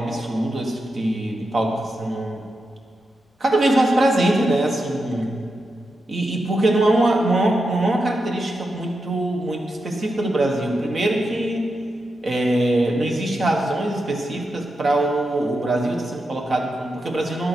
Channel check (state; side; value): normal; both; correlation 0.87